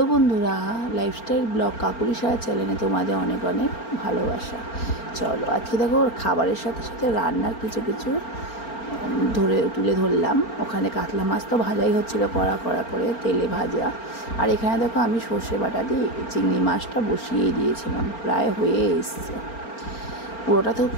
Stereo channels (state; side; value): late; right; 4.4 ms